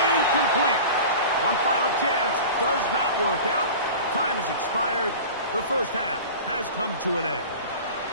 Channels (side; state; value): both; inverted; correlation -0.36